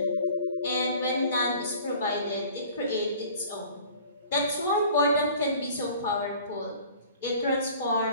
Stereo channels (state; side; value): inverted; both; correlation -0.48